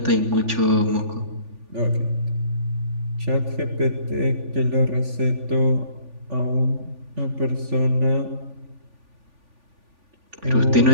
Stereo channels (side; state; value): left; late; 3.5 ms